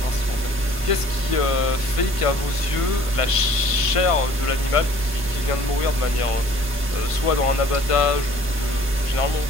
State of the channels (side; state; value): right; noise; rumble, 19 dB below the sound